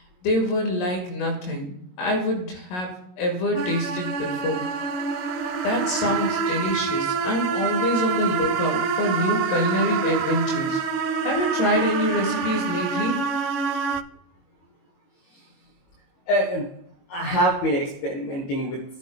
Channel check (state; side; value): late; right; 22 ms